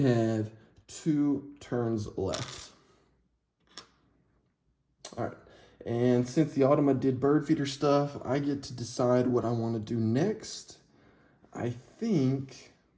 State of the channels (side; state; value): both; identical; correlation 1.00